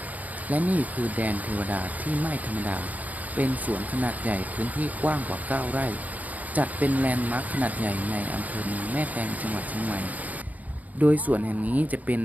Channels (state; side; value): late; left; 0.077 ms